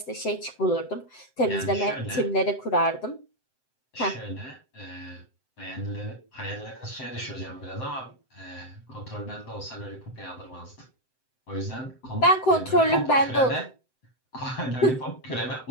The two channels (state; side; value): late; right; 7.7 ms